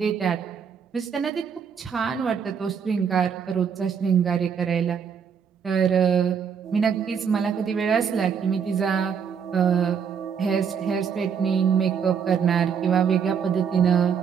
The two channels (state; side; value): quieter; left; 7.0 dB